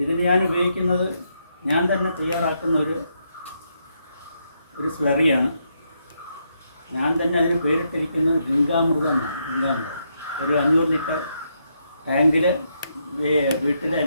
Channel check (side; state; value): both; inverted; correlation -0.78